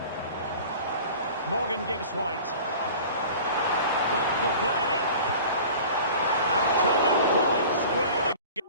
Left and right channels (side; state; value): both; inverted; correlation -0.41